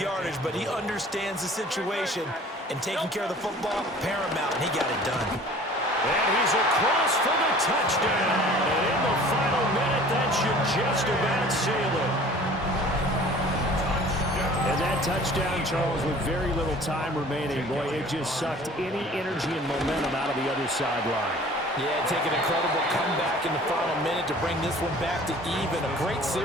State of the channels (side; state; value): both; normal; correlation 0.48